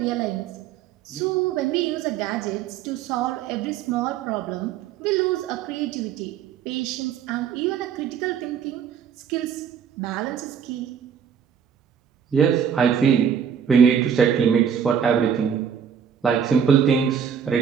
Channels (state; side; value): quieter; left; 7.8 dB